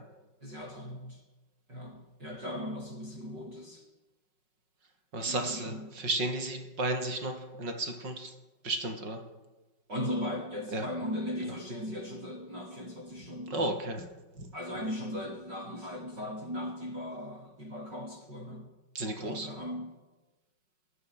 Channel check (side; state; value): left; late; 5.4 ms